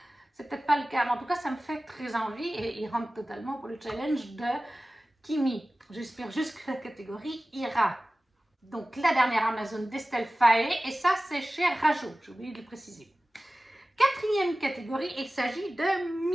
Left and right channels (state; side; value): normal; both; correlation 0.97